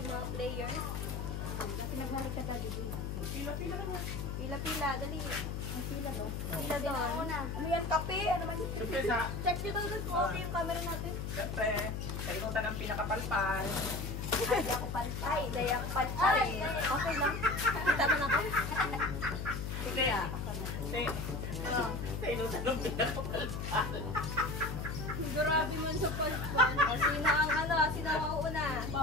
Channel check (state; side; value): noise; left; hum, 4 dB below the sound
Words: mga players. Pinaghari ka ta dito. Pila-pila naman. Pila-pila, dali. Ang pila ba? Pila doon. Ano yan, kape? Ano man? Siyempre sa, Check nyo daw doon kung okay yung camera natin. siyempre, kainutan ang pinakapalpal. Ay, di ako palpay. Di ako palpay. Okay lang. Kita mo na ako. Hindi ah. Kasi, kainutan ang pinakapalpal. Grabe man sa palpan. O, sino ang ano? Sino ang mauuna?